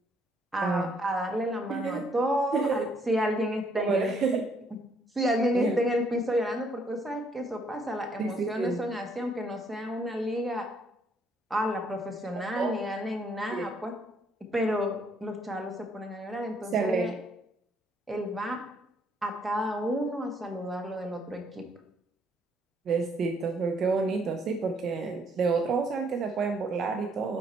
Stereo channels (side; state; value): both; normal; correlation 0.68